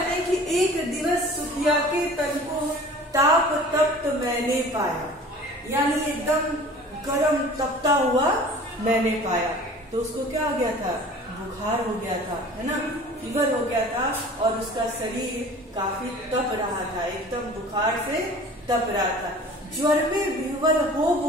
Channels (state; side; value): normal; both; correlation 0.44